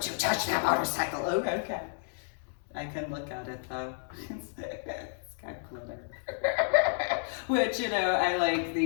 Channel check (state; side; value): silent; right; digital silence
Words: you touch that motorcycle! Oh, okay. I can look at it though. It's got glitter. Which, you know, I like